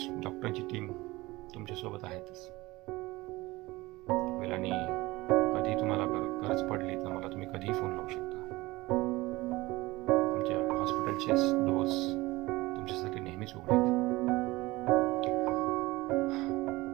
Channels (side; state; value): left; quieter; 20.4 dB